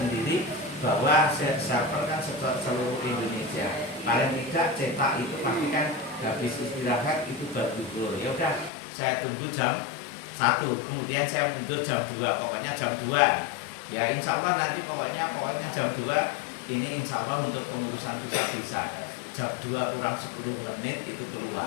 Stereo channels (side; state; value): right; drops out; at 8.7 s